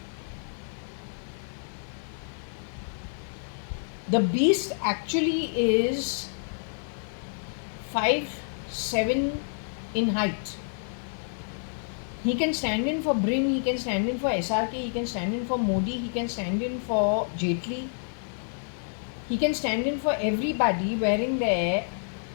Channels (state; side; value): silent; right; digital silence